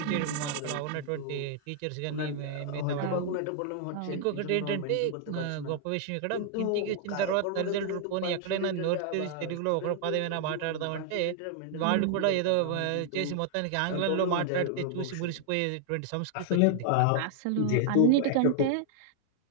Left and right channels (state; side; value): different; both; correlation 0.00